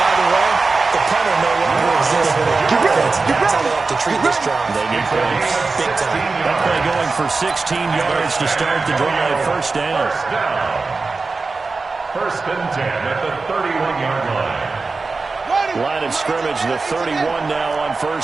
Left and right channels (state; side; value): quieter; left; 4.0 dB